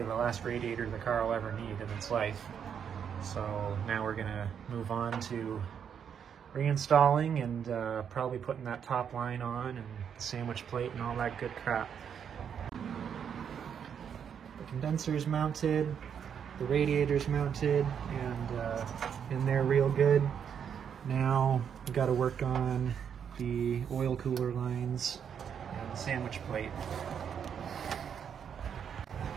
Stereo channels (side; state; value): left; quieter; 7.8 dB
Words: the last radiator the car will ever need in its life. So now we're gonna move on to reinstalling and probably putting that top line on and the sandwich plate and all that good crap. The condenser's mounted. The radiator's mounted and in there real good. Now we got to work on the oil cooler lines and the sandwich plate.